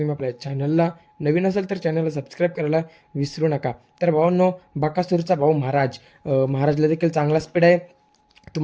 आपल्या चॅनलला नवीन असाल तर चॅनलला सबस्क्राईब करायला विसरू नका. तर भावांनो, बकासूरचा भाऊ महाराजला देखील चांगला स्पीड आहे.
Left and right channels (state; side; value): identical; both; correlation 1.00